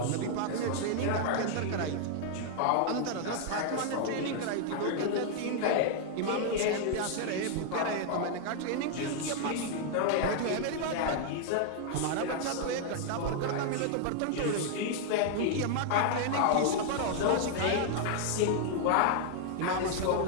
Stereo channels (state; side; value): different; both; correlation 0.00